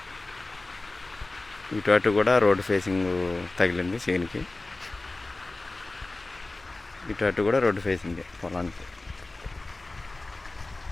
ఇటు అటు కూడా రోడ్డు ఫేసింగ్ తగిలింది చేనికి, ఇటు అటు కూడా రోడ్డు ఫేసింగ్ పొలానికి.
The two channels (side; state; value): right; quieter; 3.1 dB